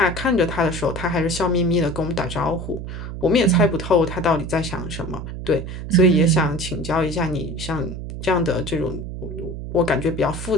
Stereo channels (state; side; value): noise; right; hum, 8 dB below the sound